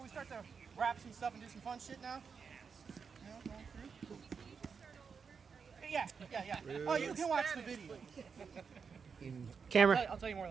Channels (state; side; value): quieter; left; 5.9 dB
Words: we start to wrap some stuff and do some fun shit now? Going through? Yeah. Oh, you can watch the video. Camera. I'll tell you more